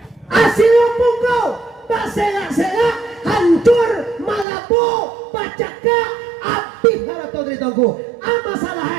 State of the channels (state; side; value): drops out; left; at 4.5 s